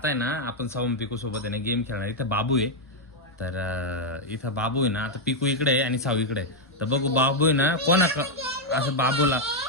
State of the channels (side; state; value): both; normal; correlation -0.01